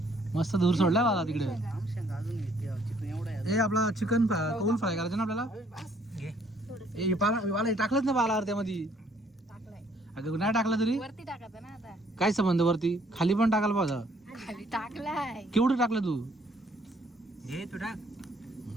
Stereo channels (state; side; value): normal; both; correlation 0.64